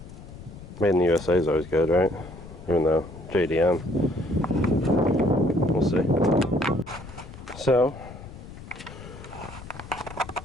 Made in the USA is always good, right? Even though JDM. We'll see. So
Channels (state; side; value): noise; left; rumble, 15 dB below the sound